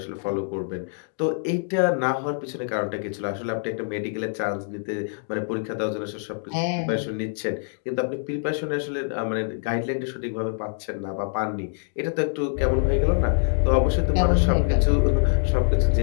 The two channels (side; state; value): right; silent; 62 dB below the other